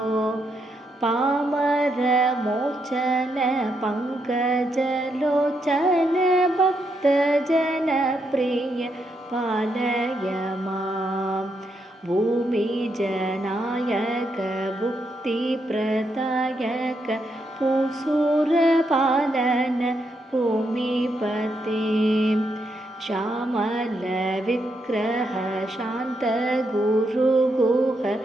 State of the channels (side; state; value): both; normal; correlation 0.80